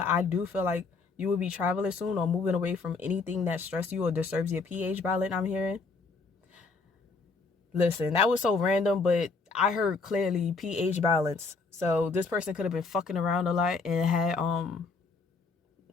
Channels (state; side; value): quieter; right; 4.3 dB